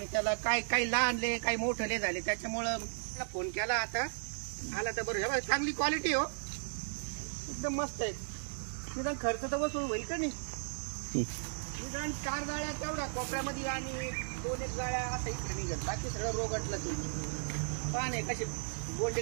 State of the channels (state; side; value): silent; left; digital silence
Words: त्याला काही लहानले काही मोठले झाले. त्याच्यामुळं मला फोन केला. आता आला तर बरं. चांगली क्वालिटी हो, एकदम मस्त आहे. निदान खर्च तर वसूल होईल का नाही. निदान 4 जाळ्या तेवढा कोपऱ्यामध्ये आणि 2-1 जाळ्या आता इकडे निघेल. बाकी सगळं रोगटलं ते. पाने कसे गोंडे